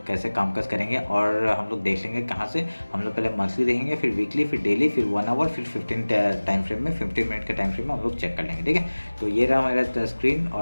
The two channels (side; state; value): both; inverted; correlation -1.00